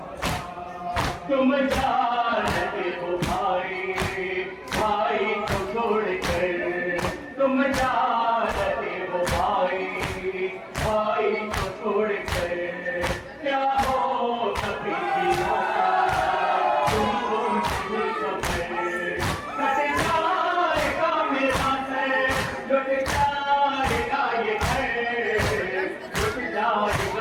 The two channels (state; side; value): identical; both; correlation 1.00